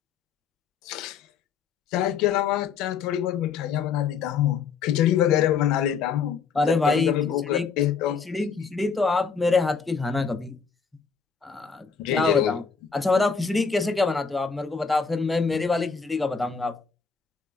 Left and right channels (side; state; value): right; quieter; 5.8 dB